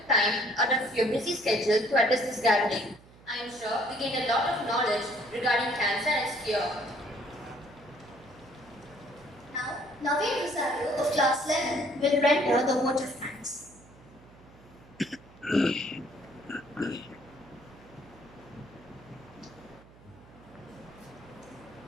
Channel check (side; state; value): right; noise; hum, 24 dB below the sound